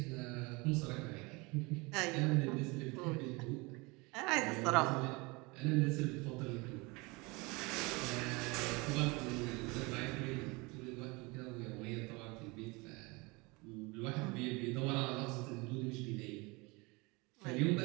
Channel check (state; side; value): quieter; left; 26.1 dB